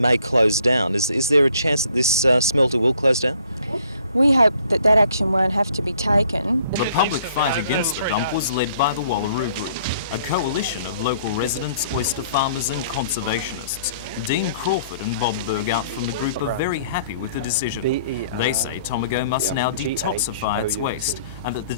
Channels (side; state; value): both; inverted; correlation -0.60